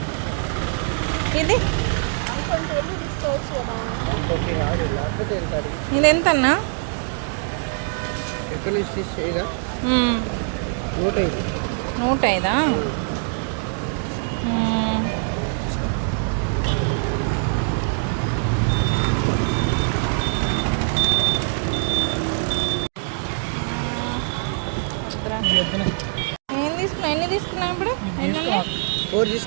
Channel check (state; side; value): silent; left; 57 dB below the other